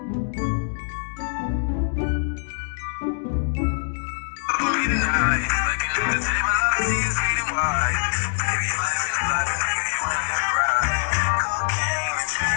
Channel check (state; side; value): silent; right; digital silence